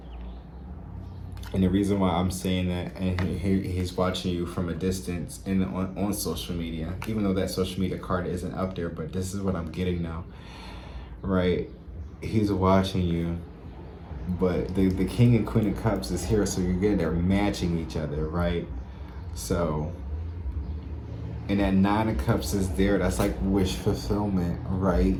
And the reason why I'm saying that, and he's watching you from a distance and on social media, even though that social media card isn't up there, but this is what I'm getting now, right? He's watching you, but the King and Queen of Cups is here, so you're getting there matching each other, right? So, and that Nine of Cups is there. That's like wish fulfillment, right?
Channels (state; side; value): identical; both; correlation 1.00